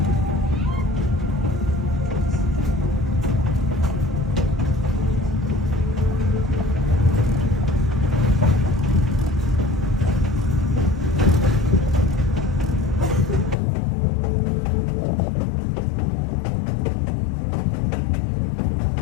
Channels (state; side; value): drops out; right; at 13.6 s